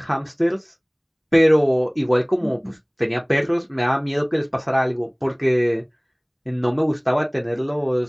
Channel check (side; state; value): both; identical; correlation 1.00